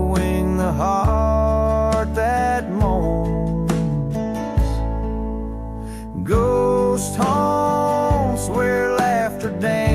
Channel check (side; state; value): both; identical; correlation 1.00